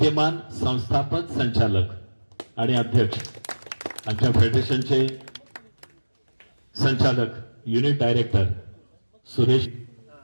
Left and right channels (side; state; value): both; inverted; correlation -1.00